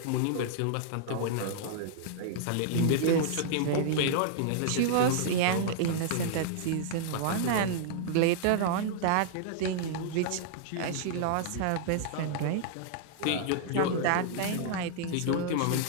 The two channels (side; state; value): both; different; correlation -0.01